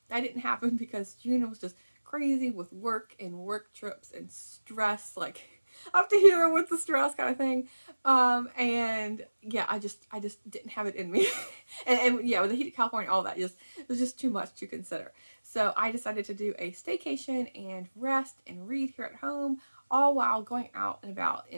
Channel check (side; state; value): both; inverted; correlation -1.00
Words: that didn't happen because June was just crazy with work and work trips and stress, like up to here with the stress kind of thing. And yeah, I just didn't have it in me. and yeah, with the heat of California, all that just it was just too much to consider. So I decided to do a staycation and rest and read here at home, all while going out and about